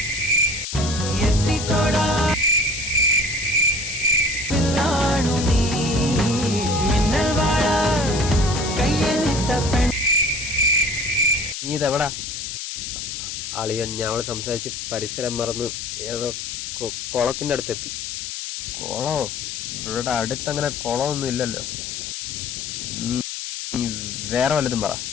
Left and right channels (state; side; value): noise; left; hiss, 6 dB below the sound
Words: നീ ഇതെവിടാ? അളിയൻ ഞങ്ങൾ സംസാരിച്ച് പരിസരം മറന്ന് ഏതോ കുളത്തിൻ്റെ അടുത്തെത്തി. കുളോ? ഇവിടെ അടുത്തങ്ങനെ കുളമൊന്നും ഇല്ലല്ലോ. നീ വേറെ വല്ലതും പറ.